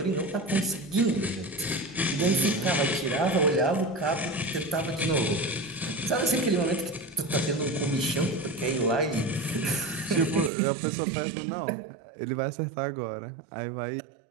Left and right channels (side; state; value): left; drops out; at 10.5 s